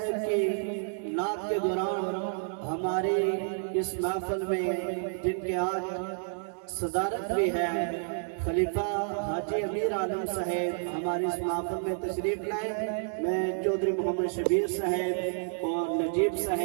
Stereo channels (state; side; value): silent; left; digital silence